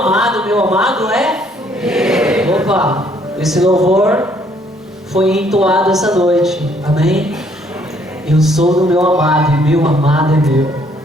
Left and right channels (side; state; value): both; normal; correlation 0.65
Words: Meu amado é? Opa, esse louvor foi entoado essa noite. Amém? Eu sou do meu amado e meu amado é meu.